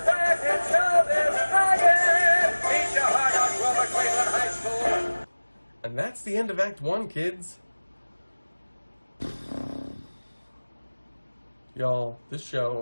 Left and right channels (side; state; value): both; inverted; correlation -1.00